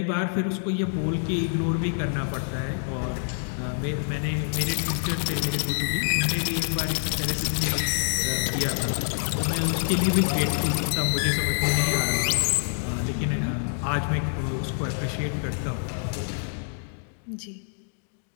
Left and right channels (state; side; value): silent; right; digital silence